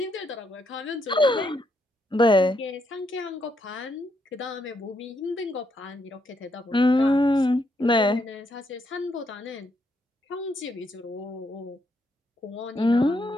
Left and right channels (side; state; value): both; normal; correlation 0.77